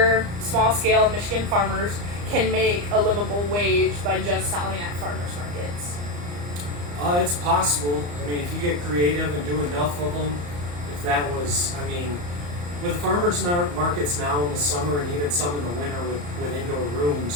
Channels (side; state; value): left; late; 34 ms